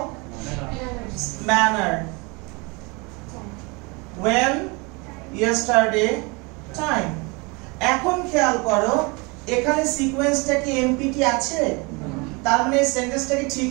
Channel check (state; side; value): quieter; left; 28.3 dB